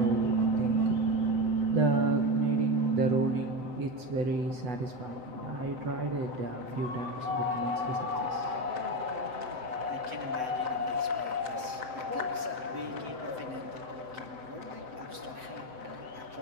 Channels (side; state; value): left; late; 7.8 ms